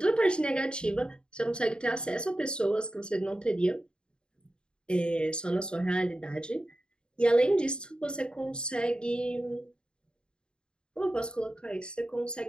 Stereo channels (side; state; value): right; late; 0.051 ms